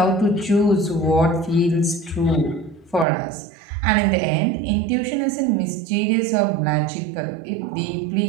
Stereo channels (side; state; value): left; drops out; at 3.1 s